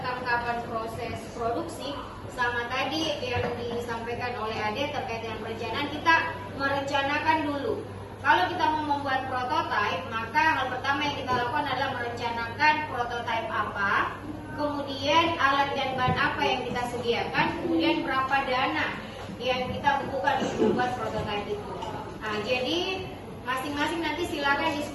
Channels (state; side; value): identical; both; correlation 1.00